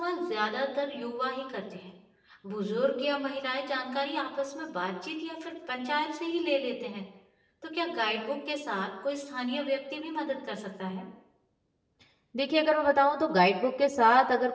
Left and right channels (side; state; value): both; identical; correlation 1.00